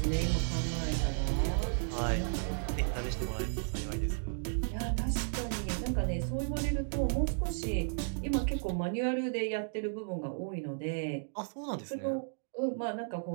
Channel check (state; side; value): silent; left; digital silence